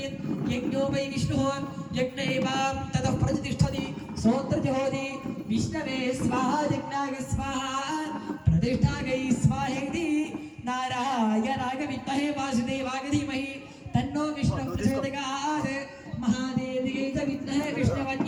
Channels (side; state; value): both; identical; correlation 1.00